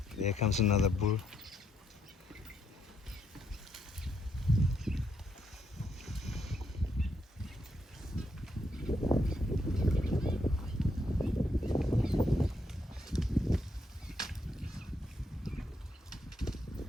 There comes another bull.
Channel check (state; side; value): normal; both; correlation 0.77